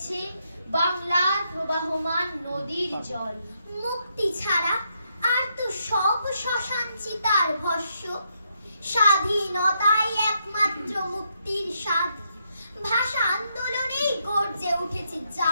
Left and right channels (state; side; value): inverted; both; correlation -0.78